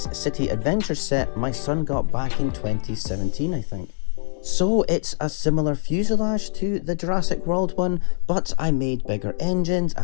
City Adventure set my son got back in 2017, I think. So it's a similar fuselage to the Jurassic World one, but I made bigger engines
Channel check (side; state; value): right; silent; digital silence